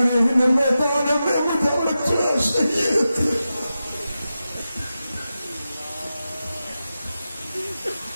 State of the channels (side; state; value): both; inverted; correlation -0.92